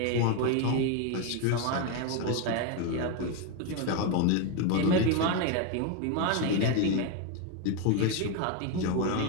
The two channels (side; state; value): both; different; correlation 0.02